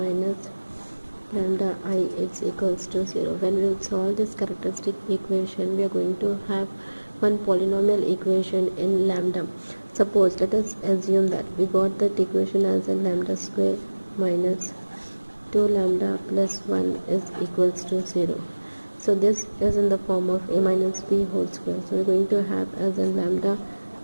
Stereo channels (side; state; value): both; inverted; correlation -1.00